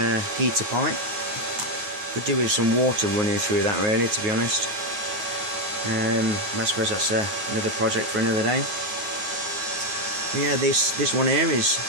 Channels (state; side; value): late; left; 9.4 ms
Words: heater pipe. Could do with some water running through that, really, to be honest. I suppose that's another project for another day. But yeah, this one here is